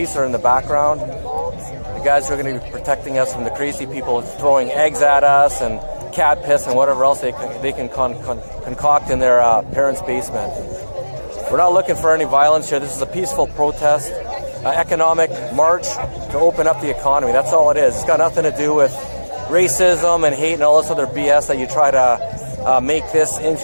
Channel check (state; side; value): inverted; both; correlation -1.00